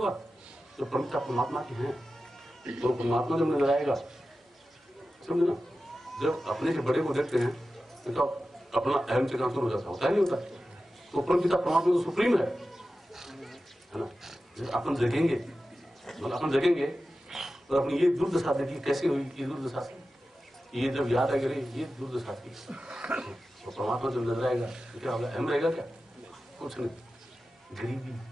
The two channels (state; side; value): normal; both; correlation 0.93